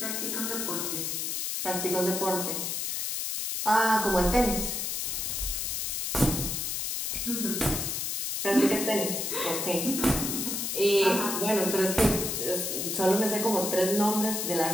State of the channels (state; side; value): noise; left; hiss, 2 dB below the sound